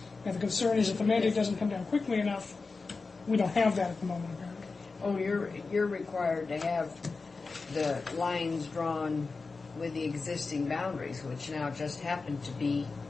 And the concern is if the mandate doesn't come down quickly enough, we don't have that at the moment, apparently. Oh, you're required to have the lines drawn with the existing boundaries, which now just happen to be,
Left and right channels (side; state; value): right; quieter; 4.1 dB